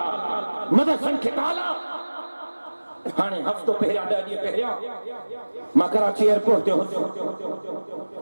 मदरसन के ताला हाने हफ्तो पहिरिया 10 ॾींहं पहिरिया मां कराची एयरपोर्ट ते हुंदो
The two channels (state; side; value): inverted; both; correlation -1.00